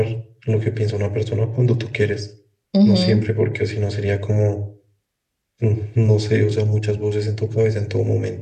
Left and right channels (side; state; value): both; identical; correlation 1.00